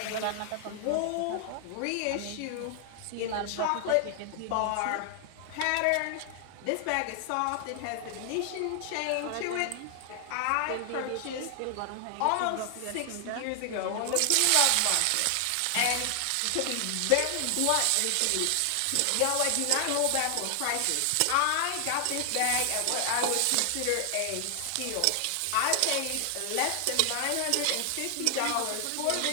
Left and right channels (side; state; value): both; different; correlation 0.00